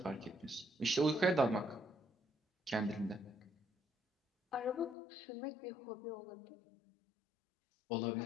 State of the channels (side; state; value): right; drops out; at 5.0 s